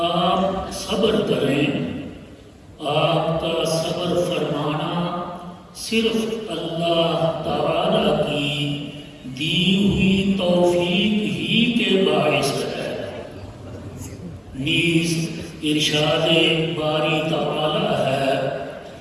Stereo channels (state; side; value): identical; both; correlation 1.00